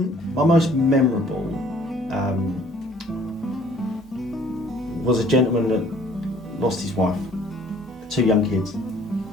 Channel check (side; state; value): both; normal; correlation 0.56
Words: My most memorable was a gentleman that lost his wife, 2 young kids,